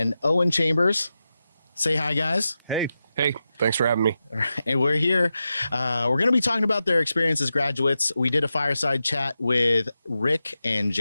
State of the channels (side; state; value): both; inverted; correlation -0.91